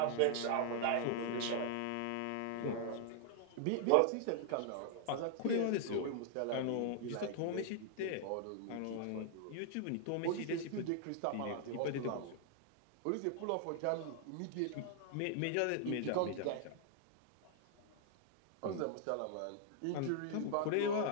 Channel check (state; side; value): different; both; correlation -0.01